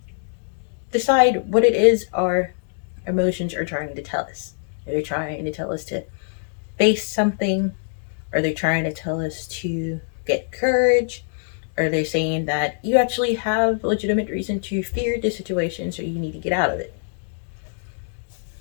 decide what it is our emotions are trying to tell us. Are they trying to tell us to face something? Are they trying to tell us to get courage? Are they saying that you actually have legitimate reason to fear this situation, so you need to get out of it?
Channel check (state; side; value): silent; right; digital silence